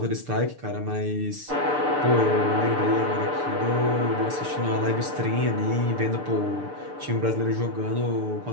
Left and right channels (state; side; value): late; left; 6.8 ms